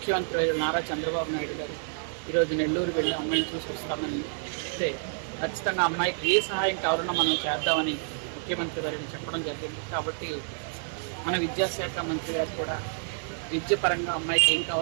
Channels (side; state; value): left; silent; digital silence